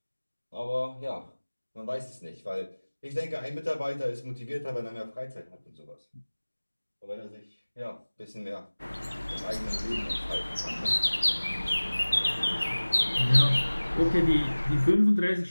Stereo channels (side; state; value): both; inverted; correlation -1.00